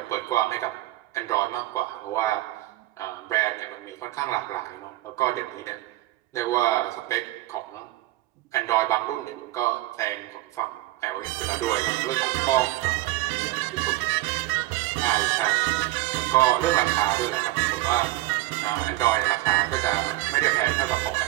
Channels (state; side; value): quieter; left; 17.6 dB